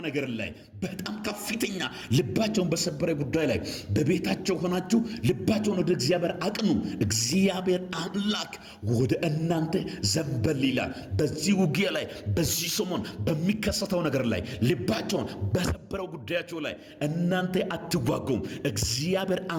ነገር ላይ በጣም ከፍተኛ ልባቸውን በሰበረ ጉዳይ ላይ በቤታቸው ሆናችሁ ልባቸውን ወደ እግዚአብሔር አቅኑ። እግዚአብሔር አምላክ ወደ እናንተ ዘንበል ይላል። በዚህ ውጊያ ላይ በዚህ ሰሞን በሚከሰተው ነገር ላይ ልባቸውን በሰበረው ጉዳያቸው ላይ እናንተ አትዋጉም። እግዚአብሔር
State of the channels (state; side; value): identical; both; correlation 1.00